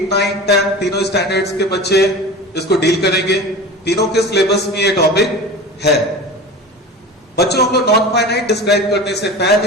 9, 10 तीनों स्टैंडर्ड्स के बच्चे इसको डील करेंगे। तीनों के सिलेबस में ये टॉपिक है। बच्चों हम लोग नॉन फाइनाइट डिस्क्राइब करने से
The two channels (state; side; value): normal; both; correlation 0.33